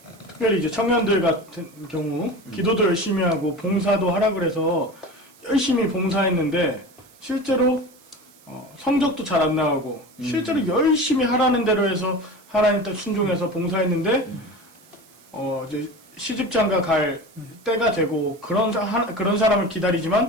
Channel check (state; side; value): noise; right; hiss, 27 dB below the sound